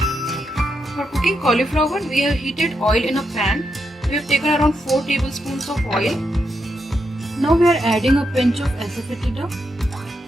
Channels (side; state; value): both; normal; correlation 0.83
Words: For cooking cauliflower, we have heated oil in a pan. We have taken around 4 tablespoons of oil. Now we are adding a pinch of asafoetida.